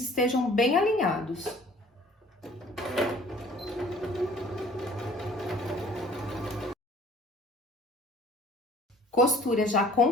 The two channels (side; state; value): both; normal; correlation 0.52